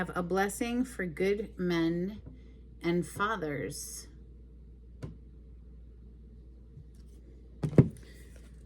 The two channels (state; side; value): identical; both; correlation 1.00